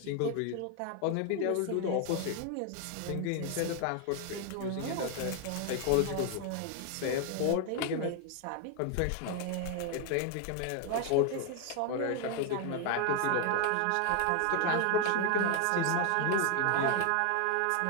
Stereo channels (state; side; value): different; both; correlation 0.01